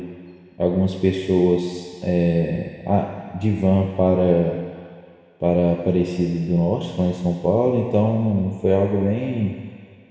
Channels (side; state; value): both; identical; correlation 1.00